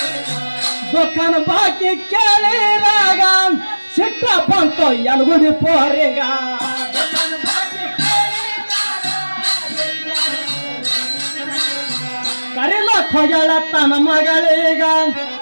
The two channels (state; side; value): inverted; both; correlation -1.00